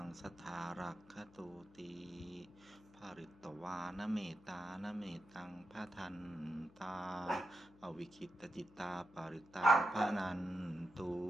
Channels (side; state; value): left; noise; hum, 24 dB below the sound